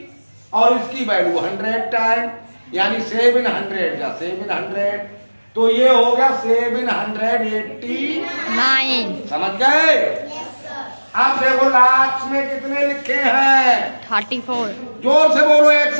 और इसकी वैल्यू 100 टाइम यानी 700 या 700। तो ये हो गया 789। समझ गए? अब देखो लाख में कितने लिखे हैं? 34। जोर से बोलो एक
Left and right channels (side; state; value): both; inverted; correlation -1.00